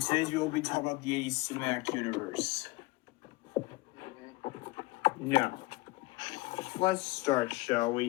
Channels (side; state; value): right; quieter; 21.8 dB